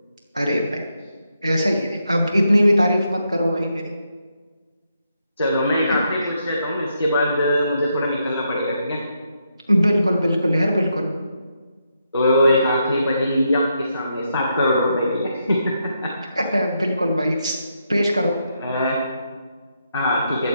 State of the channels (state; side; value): inverted; both; correlation -0.80